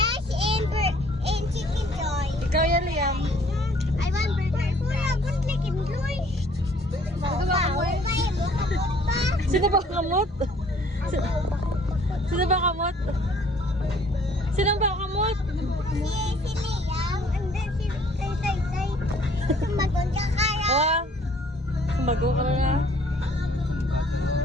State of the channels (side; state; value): both; normal; correlation 0.58